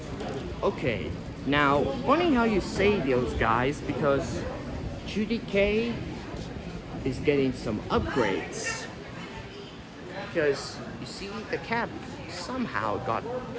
Okay, now, funny how you say those guys, because Judy K is getting some upgrades. Because, you see, the cap somehow got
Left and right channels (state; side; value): identical; both; correlation 1.00